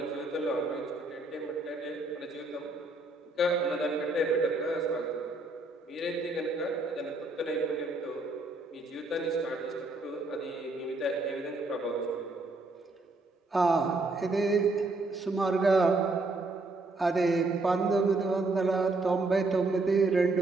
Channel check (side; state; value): left; quieter; 3.1 dB